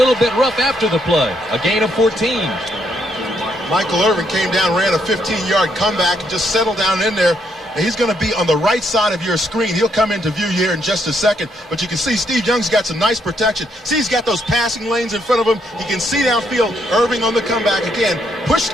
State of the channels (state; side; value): normal; both; correlation 0.74